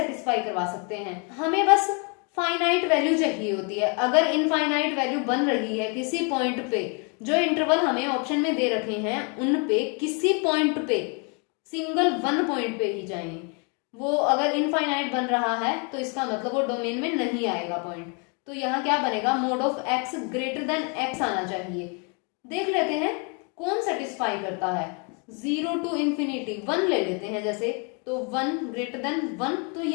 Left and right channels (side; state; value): right; quieter; 35.2 dB